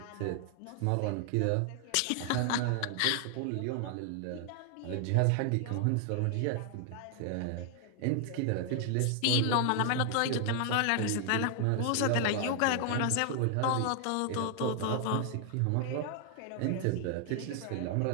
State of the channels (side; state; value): both; different; correlation 0.00